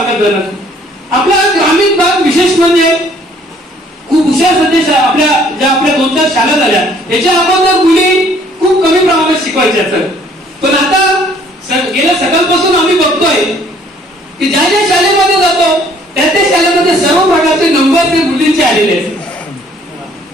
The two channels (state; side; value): normal; both; correlation 0.60